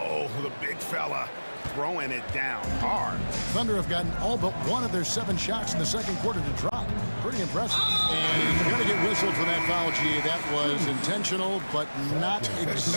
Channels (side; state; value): both; inverted; correlation -1.00